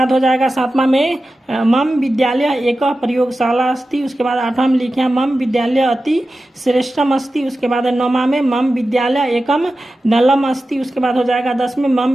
हो जाएगा सातवां में मम विद्यालय एक प्रयोगशाला अस्ति। उसके बाद आठवां में लिखे हैं मम विद्यालय अति श्रेष्ठम अस्ति। उसके बाद नौवां में मम विद्यालय एकम नलम अस्ति। उसके बाद हो जाएगा 10 में मम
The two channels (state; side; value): normal; both; correlation 0.93